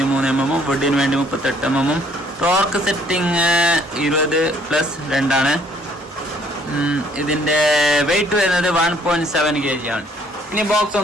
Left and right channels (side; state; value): both; normal; correlation 0.62